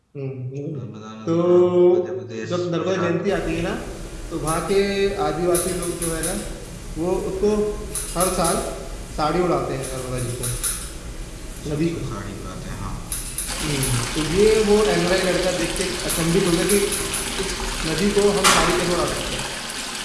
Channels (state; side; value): identical; both; correlation 1.00